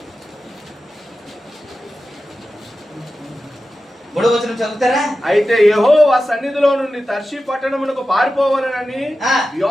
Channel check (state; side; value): normal; both; correlation 0.93